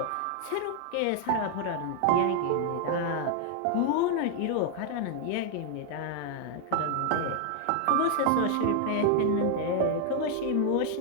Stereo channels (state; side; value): different; both; correlation 0.00